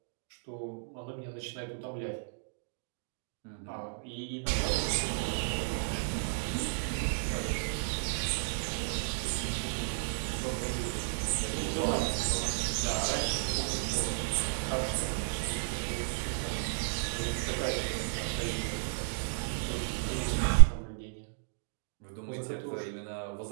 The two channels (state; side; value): silent; left; digital silence